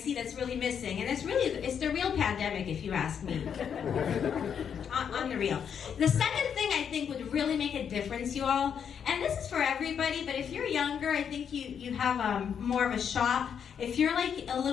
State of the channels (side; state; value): right; quieter; 7.7 dB